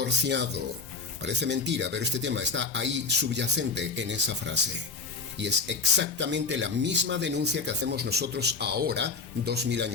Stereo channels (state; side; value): quieter; right; 4.5 dB